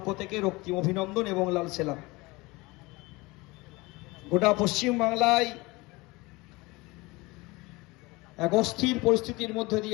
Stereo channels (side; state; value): right; quieter; 23.1 dB